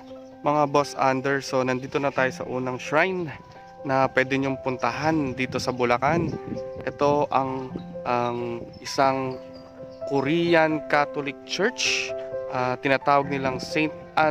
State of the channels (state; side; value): identical; both; correlation 1.00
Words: mga Boss Under? So, nandito na tayo sa unang shrine na pwede nyong puntahan dito sa Bulacan. Ito ang isang Korean Catholic Church. Tinatawag nilang St.